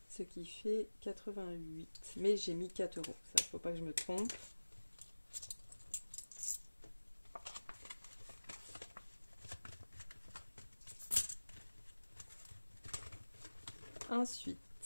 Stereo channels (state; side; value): inverted; both; correlation -1.00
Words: Ce qui fait 88. Mais j'ai mis 4 €. Ça, faut pas que je me trompe. Ensuite,